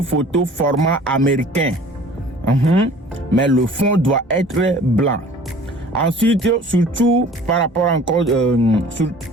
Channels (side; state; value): both; normal; correlation 0.48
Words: photo format américain. Mais le fond doit être blanc. Ensuite, surtout par rapport encore